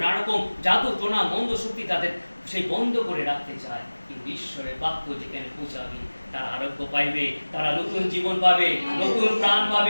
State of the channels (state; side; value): inverted; both; correlation -1.00